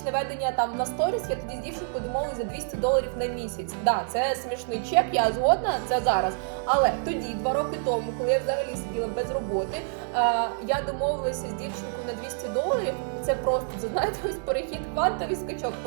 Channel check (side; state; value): left; silent; digital silence